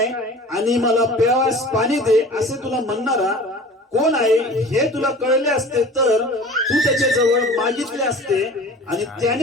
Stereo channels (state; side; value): normal; both; correlation 0.41